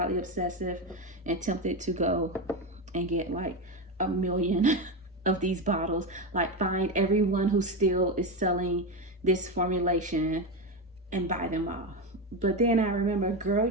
obsessive and tempted to go and get like 1 million of these bottles, like find everyone who still is selling this formulation and buy them all. But then I remember, girl,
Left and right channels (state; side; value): normal; both; correlation 0.15